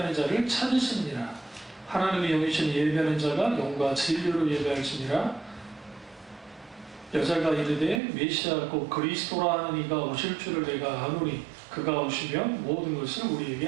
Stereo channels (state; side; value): drops out; left; at 8.0 s